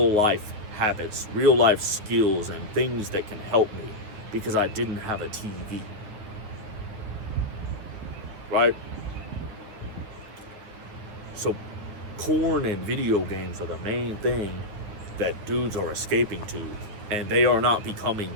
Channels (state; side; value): late; left; 9.7 ms